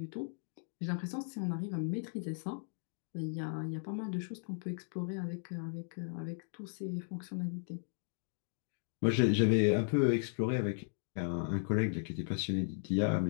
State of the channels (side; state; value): right; silent; 54 dB below the other